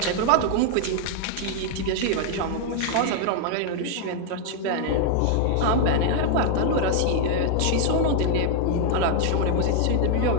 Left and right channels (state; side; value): different; both; correlation 0.00